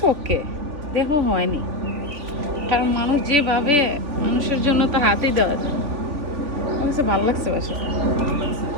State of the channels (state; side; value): late; left; 3.4 ms